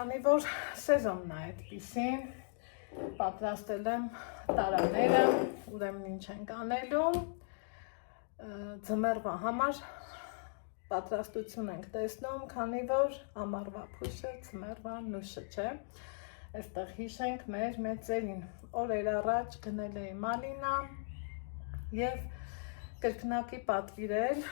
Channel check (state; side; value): silent; right; digital silence